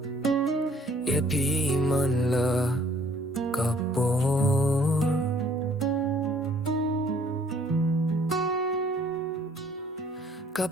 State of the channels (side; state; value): both; normal; correlation 0.59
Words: e pi man la kapor